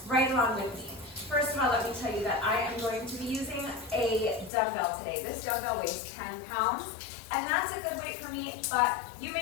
right along with me. First of all, let me tell you that I am going to be using a dumbbell today. This dumbbell weighs 10 pounds, and that's a good weight for me, but you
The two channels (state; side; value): drops out; right; at 4.5 s